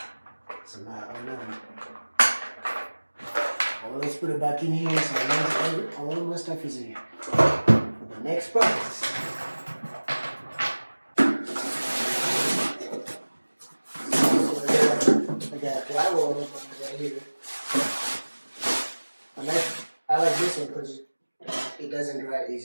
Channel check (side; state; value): both; inverted; correlation -1.00